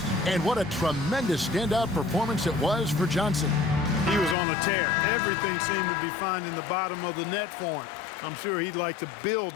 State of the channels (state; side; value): drops out; right; at 4.4 s